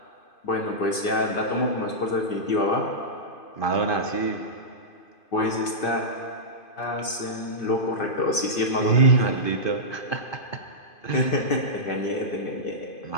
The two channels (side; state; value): right; late; 2.5 ms